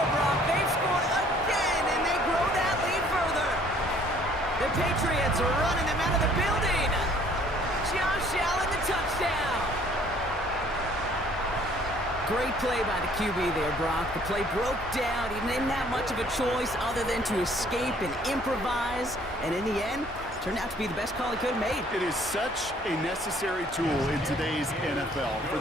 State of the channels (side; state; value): both; normal; correlation 0.58